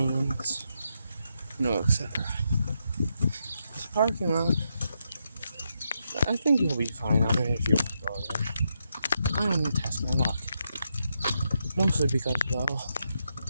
etc. This parking lot, I think you'll be fine on it if you want to go there. I don't need to test my luck. Mostly because, well,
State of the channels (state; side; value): inverted; both; correlation -0.82